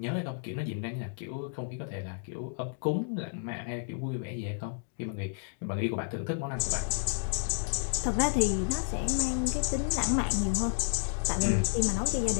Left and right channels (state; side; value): silent; right; digital silence